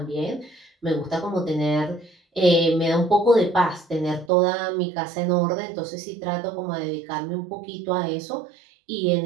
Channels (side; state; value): left; drops out; at 4.3 s